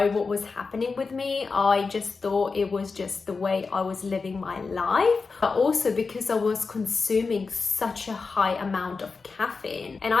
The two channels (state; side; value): quieter; right; 4.5 dB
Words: what was happening with me. I just thought it was just the way I was living my life, but also because I was consuming such a high amount of caffeine. And